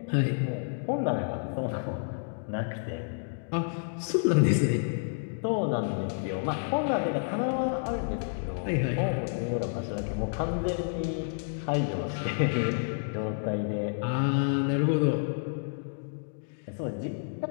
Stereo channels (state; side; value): silent; right; digital silence